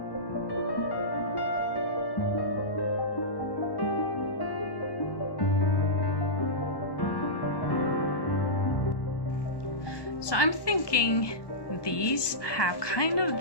So I'm thinking these have kind of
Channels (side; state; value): right; late; 1.2 ms